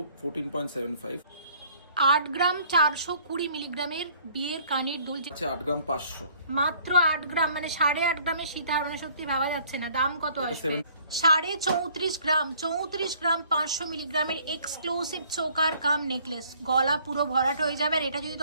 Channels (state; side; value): inverted; both; correlation -0.58